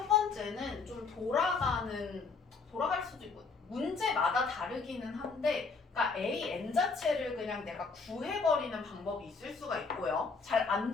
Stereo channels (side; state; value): right; quieter; 4.7 dB